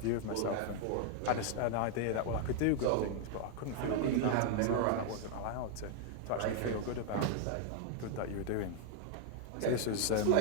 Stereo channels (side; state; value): both; different; correlation 0.00